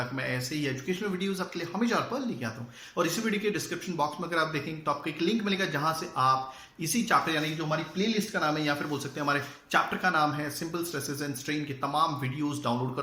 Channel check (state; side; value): identical; both; correlation 1.00